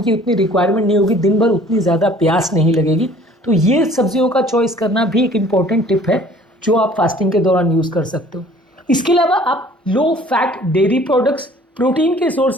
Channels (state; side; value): normal; both; correlation 0.52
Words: की उतनी रिक्वायरमेंट नहीं होगी, दिन भर उतनी ज़्यादा प्यास नहीं लगेगी। तो ये सब्जियों का चॉइस करना भी एक इम्पॉर्टेंट टिप है जो आप फास्टिंग के दौरान यूज़ कर सकते हो। इसके अलावा आप low fat dairy products, protein के